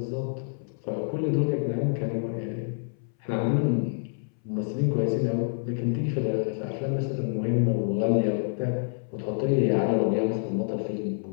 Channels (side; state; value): right; silent; 60 dB below the other